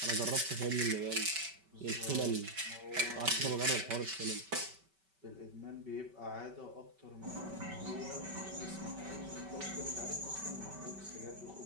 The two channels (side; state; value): left; late; 5.2 ms